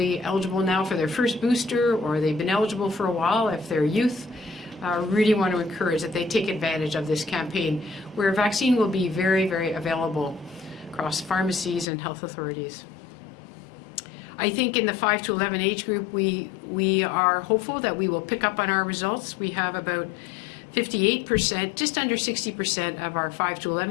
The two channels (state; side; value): drops out; right; at 11.9 s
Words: eligible now for their first booster, or they've been eligible for a while if they're youth, really want to encourage that they take advantage of this campaign, where vaccine will be very, very available across pharmacies and health authorities. I think in the 5 to 11 age group, we are hopeful that we will pick up on our results. We have about 58%, just under 60% of our 5 to